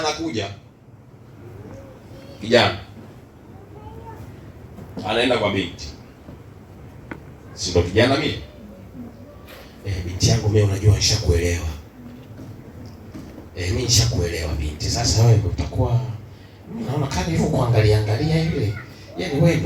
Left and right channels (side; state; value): both; identical; correlation 1.00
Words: kijana anaenda kwa binti, si ndo kijana mimi? Binti yangu mimi, unajua nishakuelewa. Mimi nishakuelewa binti. Sasa wewe utakuwa, naona kama hivyo kuangalia angalia ile, yaani wewe